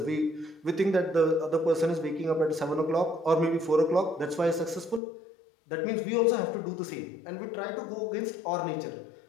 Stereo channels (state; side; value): drops out; right; at 5.0 s